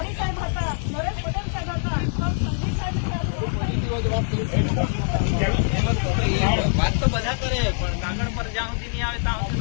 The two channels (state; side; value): silent; right; digital silence